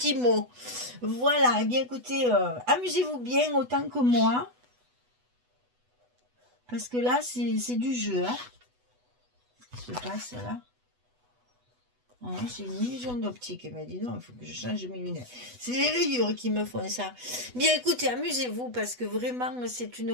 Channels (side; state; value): left; late; 8.1 ms